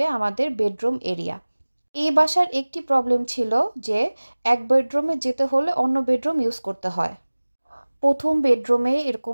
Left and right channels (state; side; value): inverted; both; correlation -1.00